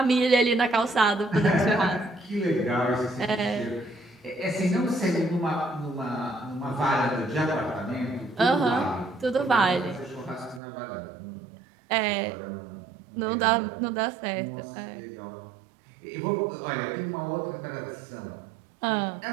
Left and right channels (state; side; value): drops out; left; at 10.6 s